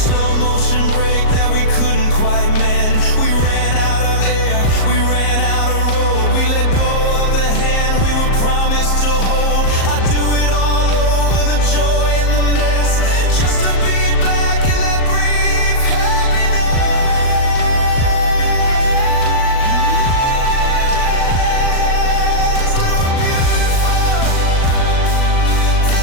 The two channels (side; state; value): right; late; 38 ms